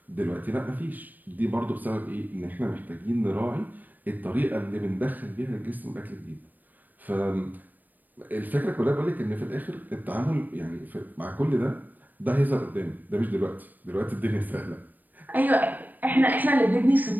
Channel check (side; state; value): left; late; 0.087 ms